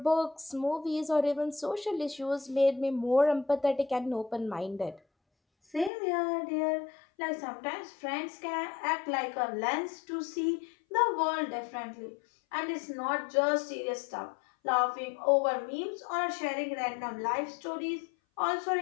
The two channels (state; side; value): drops out; right; at 5.9 s